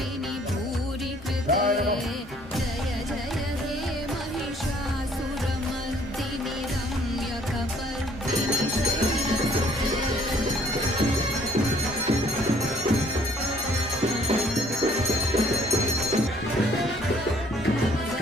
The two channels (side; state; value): both; normal; correlation 0.60